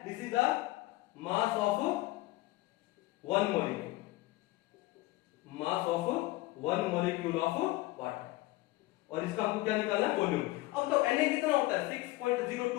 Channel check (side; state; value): right; quieter; 19.2 dB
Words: this is the mass of 1 molecule, mass of 1 molecule of water, और इसका हमको क्या निकालना है, वॉल्यूम। अब तो Na कितना होता है